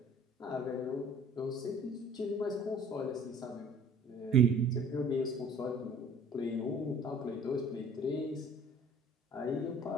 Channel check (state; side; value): normal; both; correlation 0.51